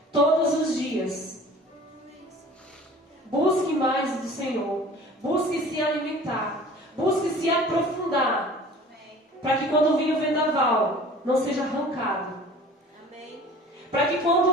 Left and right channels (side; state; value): both; normal; correlation 0.44